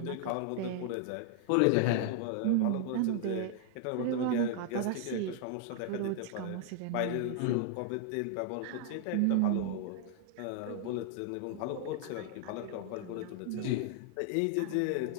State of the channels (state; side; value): different; both; correlation 0.00